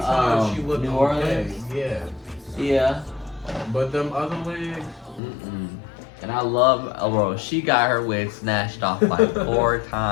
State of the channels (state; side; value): drops out; right; at 5.2 s